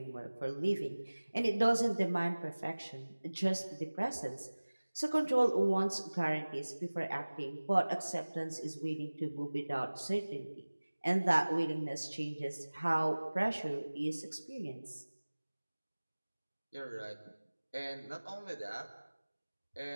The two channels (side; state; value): both; inverted; correlation -1.00